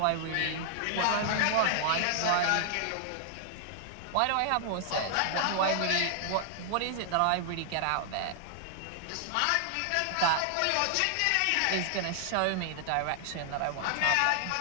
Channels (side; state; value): both; different; correlation 0.00